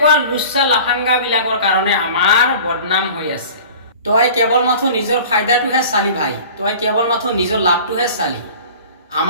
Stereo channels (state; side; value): inverted; both; correlation -0.42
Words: লুচ্চা লাফাংগা বিলাকৰ কাৰণে আমাৰ বদনাম হৈ আছে। তই কেৱল মাথো নিজৰ ফাইদাটোহে চালি ভাই, তই কেৱল মাথো নিজৰ লাভটোহে চালি।